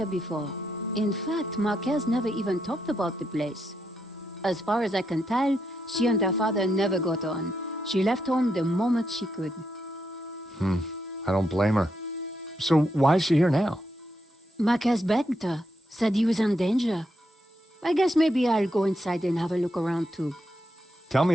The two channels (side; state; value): both; normal; correlation 0.81